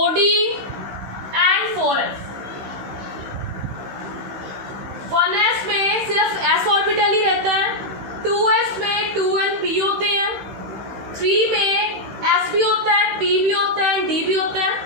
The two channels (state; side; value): late; left; 15 ms